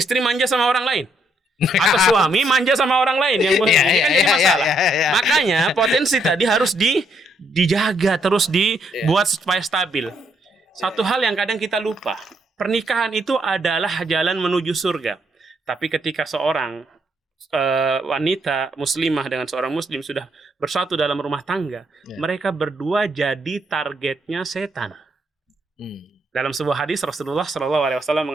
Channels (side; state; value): both; normal; correlation 0.73